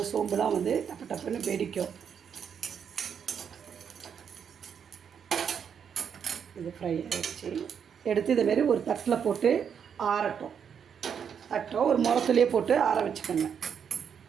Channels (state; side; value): quieter; left; 7.5 dB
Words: சோம்புலாம் வந்து டப்பு டப்புன்னு வெடிக்கும். இது ஃப்ரை ஆகிடுச்சு. எடுத்து இதேமாரி ஒரு தட்டில் போட்டு ஆறட்டும். ஒரு முரத்துலேயே போட்டு ஆற வச்சுக்கோங்க.